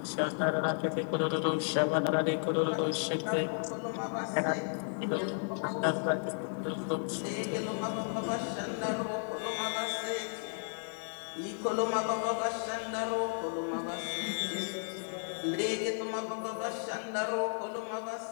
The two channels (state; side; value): silent; right; digital silence